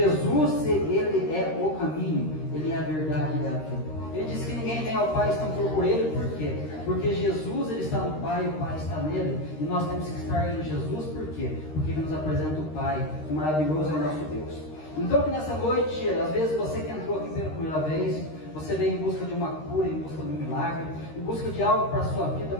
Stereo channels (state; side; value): late; right; 13 ms